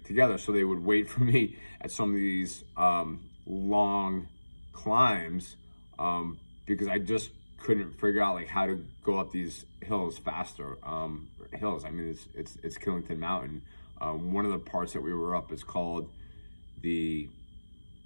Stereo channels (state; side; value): inverted; both; correlation -1.00